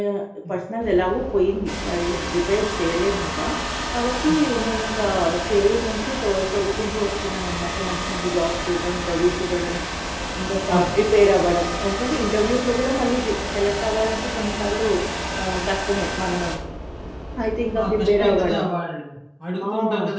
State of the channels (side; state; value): both; identical; correlation 1.00